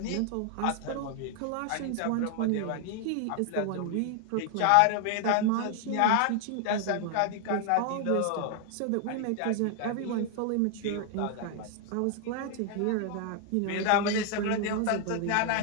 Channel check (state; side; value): different; both; correlation 0.00